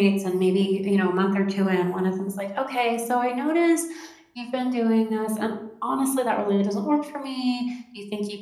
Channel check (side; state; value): both; identical; correlation 1.00